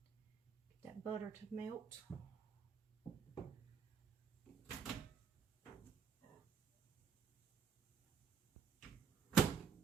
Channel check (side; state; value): left; quieter; 6.7 dB